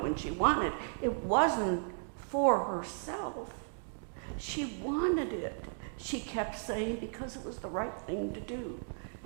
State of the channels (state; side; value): silent; left; digital silence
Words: when she wanted. It wasn't for herself. She wanted it. She kept saying because it was the right thing to do.